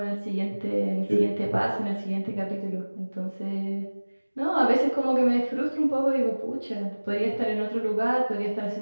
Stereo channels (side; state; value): both; inverted; correlation -1.00